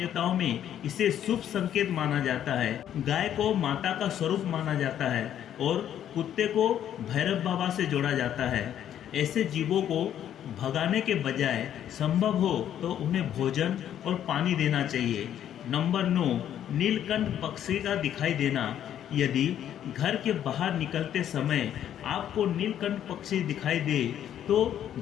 में इसे शुभ संकेत माना जाता है। गाय को माता का स्वरूप माना जाता है और कुत्ते को भैरव बाबा से जोड़ा जाता है। ऐसे जीवों को भगाने के बजाय संभव हो तो उन्हें भोजन और पानी देना चाहिए। नंबर 9, नीलकंठ पक्षी का दिखाई देना। यदि घर के बाहर निकलते समय आपको नीलकंठ पक्षी दिखाई दे तो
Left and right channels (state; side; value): quieter; right; 10.4 dB